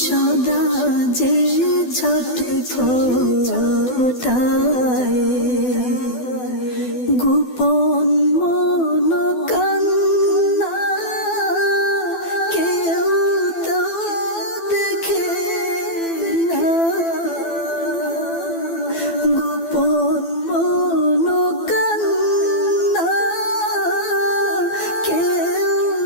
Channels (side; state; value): right; late; 12 ms